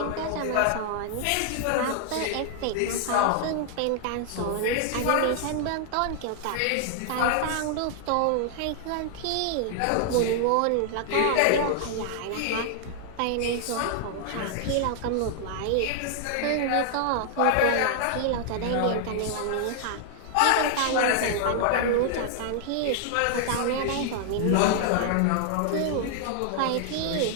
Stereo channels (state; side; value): different; both; correlation 0.00